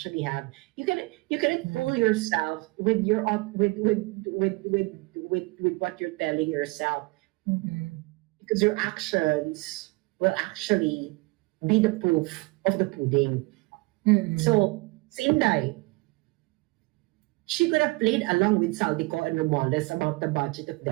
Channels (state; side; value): quieter; left; 25.6 dB